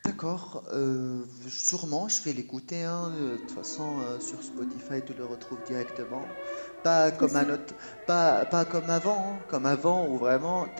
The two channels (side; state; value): both; inverted; correlation -1.00